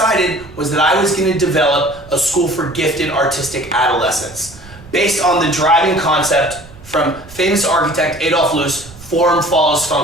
was that I was going to develop a school for gifted artistic adolescents based on the driving concept from famous architect Adolf Loos, form follows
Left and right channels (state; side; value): noise; right; rumble, 20 dB below the sound